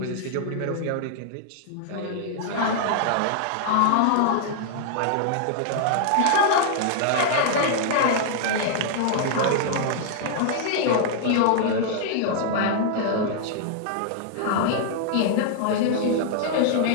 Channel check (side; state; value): both; different; correlation -0.01